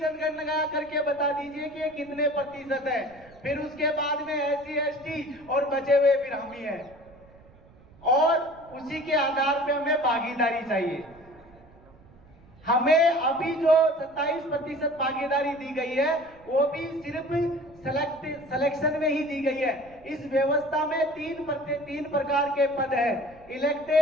करके बता दीजिए कि ये कितने प्रतिशत है। फिर उसके बाद में एससी एसटी और बचे हुए फिर हम ही हैं और उसी के आधार पे हमें भागीदारी चाहिए। हमें अभी जो 27% भागीदारी दी गई है वो भी सिर्फ सिलेक्शन में ही दी गई है। इस व्यवस्था में तीन प्रकार के पद है,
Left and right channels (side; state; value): right; noise; rumble, 25 dB below the sound